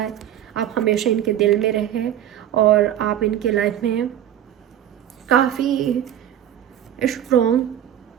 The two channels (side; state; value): left; quieter; 11.0 dB